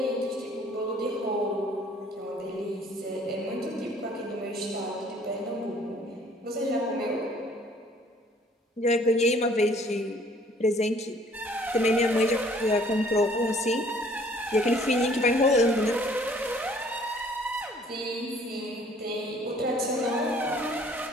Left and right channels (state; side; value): normal; both; correlation 0.57